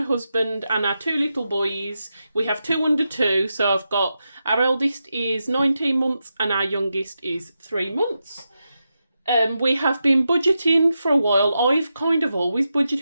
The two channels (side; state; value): both; inverted; correlation -0.88